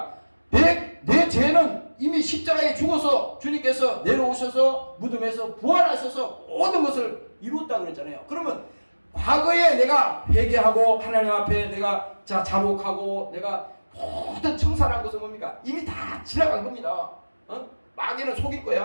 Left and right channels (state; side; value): inverted; both; correlation -1.00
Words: 내 죄는 이미 십자가에 죽어서 주님께서 내려오셔서 무덤에서 부활하셔서 모든 것을 이루었다 그랬잖아요. 그러면 과거에 내가 회개하고 하나님 앞에 내가 자복하고 내가 모든 청산한 것은 뭡니까? 이미 다 지나간 겁니다. 마귀는 속일